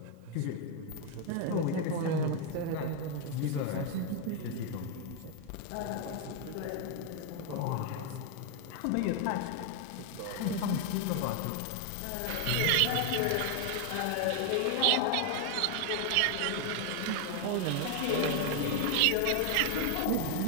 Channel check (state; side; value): different; both; correlation 0.01